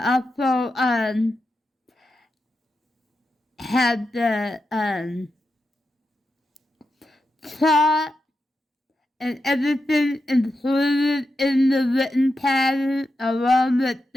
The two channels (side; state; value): both; normal; correlation 0.88